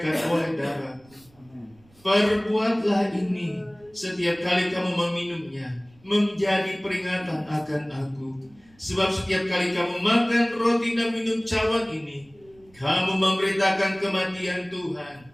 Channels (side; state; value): right; noise; rumble, 29 dB below the sound